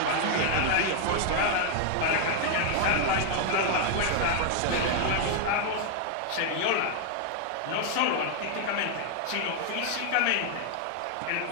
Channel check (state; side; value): different; both; correlation 0.00